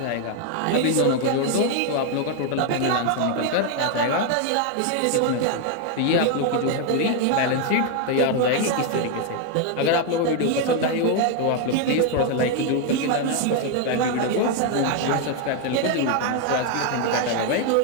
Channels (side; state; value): both; different; correlation 0.01